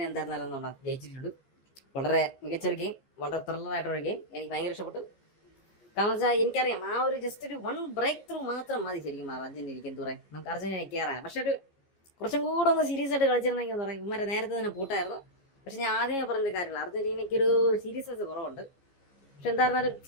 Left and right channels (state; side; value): late; right; 15 ms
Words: എന്തായിരുന്നാലും നമ്മൾ ജയിച്ചിട്ടുണ്ട്. വളരെ മികച്ചൊരു ഗെയിം, വളരെ ത്രില്ലറായിട്ടൊരു ഗെയിം. എനിക്ക് ഭയങ്കര ഇഷ്ടപ്പെട്ടു. കാരണം വെച്ചാൽ എനിക്കറിയാം ആ ഒരു ജസ്റ്റ് ഒരു വൺ ബ്രേക്ക് ത്രൂ മാത്രം മതി ശരിക്കും അർജന്റീനയ്ക്ക് എന്ത് പറയാം, നമുക്ക് അർജന്റീന കയറാൻ. പക്ഷെ ഒരു കുറച്ചും കൂടെ ഒന്ന് സീരിയസ് ആയിട്ട് കളിച്ചിരുന്നെങ്കിൽ എന്താ പറയുക, ഇവന്മാരെ നേരത്തെ തന്നെ പൂട്ടായിരുന്നു. പക്ഷെ ഞാൻ ആദ്യമേ പറഞ്ഞ കാര്യമില്ല, അർജന്റീനയ്ക്ക് ഒരു സീരിയസ്നെസ് കുറവുണ്ട്. പക്ഷെ എന്തായിരുന്നാലും